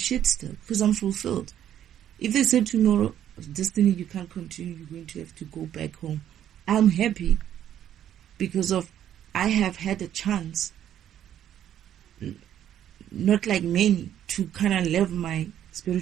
still because I'm fulfilled. If they say tomorrow, Destiny, you can't continue, you're going to have to go back home, I'm happy because of I have had a chance, not like many, to kind of live my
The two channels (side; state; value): left; quieter; 10.7 dB